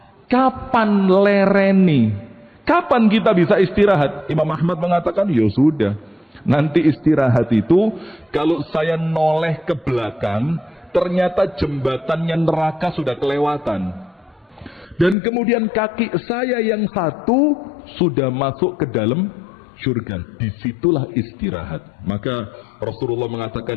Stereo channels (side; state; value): right; drops out; at 15.2 s